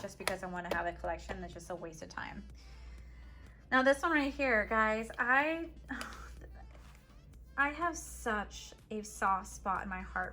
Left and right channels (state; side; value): identical; both; correlation 1.00